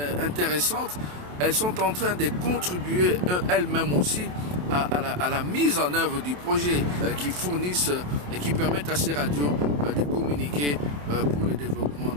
intéressante. Elles sont en train de contribuer elles-mêmes aussi à la mise en œuvre du projet qui fournissent et qui permettent à ces radios de communiquer pour le développement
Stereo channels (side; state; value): left; late; 28 ms